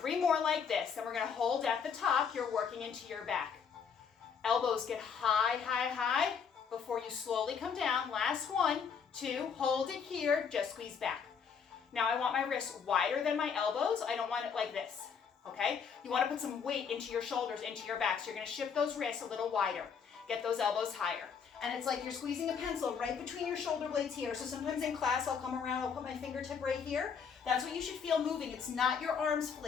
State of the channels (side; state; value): right; quieter; 6.6 dB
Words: more like this. Then we're going to hold at the top. You're working into your back. Elbows get high, high, high before you slowly come down. Last 1, 2, hold it here. Just squeeze back. Now I want my wrists wider than my elbows. I don't want it like this. Okay? You want to put some weight into your shoulders, into your back. So you're going to shift those wrists a little wider. Get those elbows higher. And it's like you're squeezing a pencil right between your shoulder blades here. So sometimes in class, I'll come around, I'll put my fingertip right here. That's what you should feel moving. It's not your arms